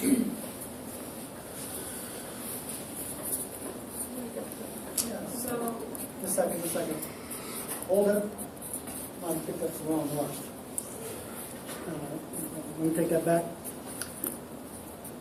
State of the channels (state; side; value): identical; both; correlation 1.00